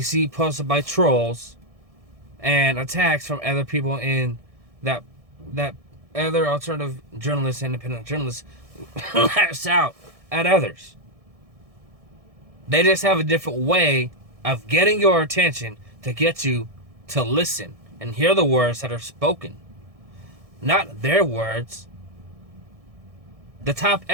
see posted by trolls and attacks from other people in that other alternative journalists, independent journalists lash out at others. They just have a different way of getting your attention to get you to listen and hear the words that are spoken. Not their words. The top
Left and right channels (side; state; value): left; late; 1.6 ms